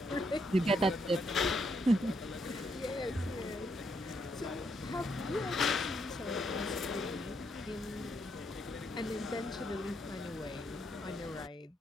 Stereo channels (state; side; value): normal; both; correlation 0.76